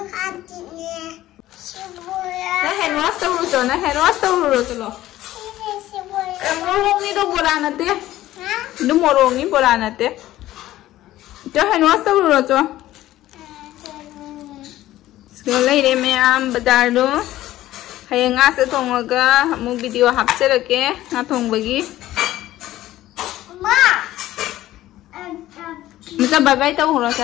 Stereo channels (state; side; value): quieter; right; 14.9 dB